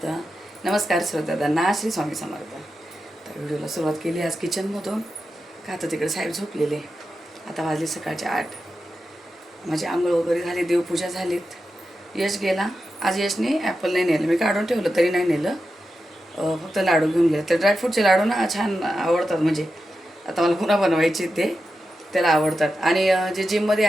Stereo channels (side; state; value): both; normal; correlation 0.90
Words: नमस्कार श्रोत्यांना श्री स्वामी समर्थ. तर व्हिडिओला सुरुवात केली आज किचनमधून. का तर तिकडे साहेब झोपलेले. आता वाजले सकाळचे 8. माझी आंघोळ वगैरे झाली, देवपूजा झालीत. यश गेला. आज यशने ॲपल नाही नेलं, मी काढून ठेवलं तरी नाही नेलं. फक्त लाडू घेऊन गेलं. तर ड्रायफ्रूटचे लाडू ना छान आवडतात, म्हणजे आता मला पुन्हा बनवायचे ते त्याला आवडतात. आणि जे जिममध्ये